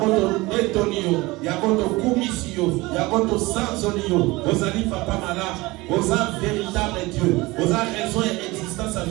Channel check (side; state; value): left; quieter; 21.7 dB